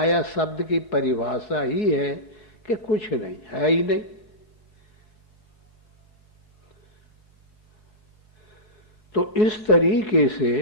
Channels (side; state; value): right; late; 4.7 ms